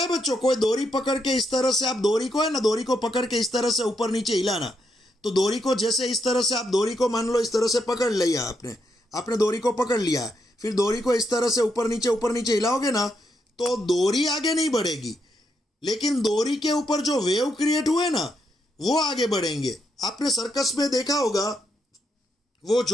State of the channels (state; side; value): normal; both; correlation 0.80